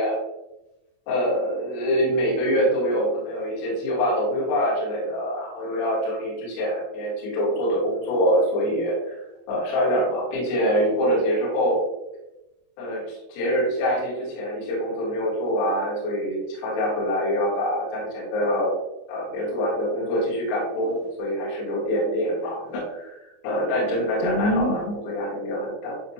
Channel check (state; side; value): late; right; 24 ms